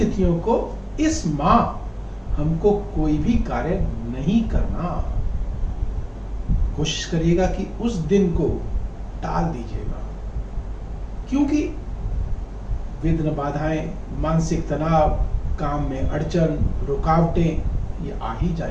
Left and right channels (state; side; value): identical; both; correlation 1.00